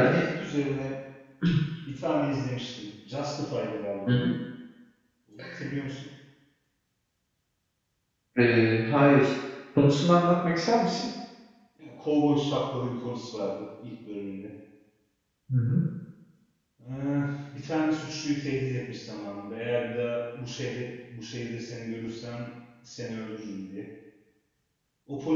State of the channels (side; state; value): both; identical; correlation 1.00